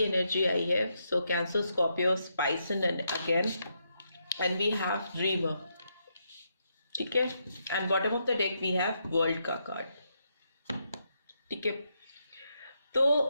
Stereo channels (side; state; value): both; inverted; correlation -0.80